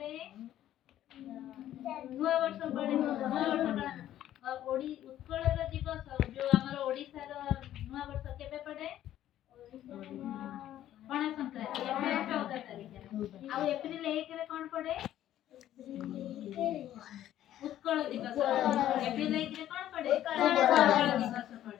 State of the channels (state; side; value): quieter; right; 12.3 dB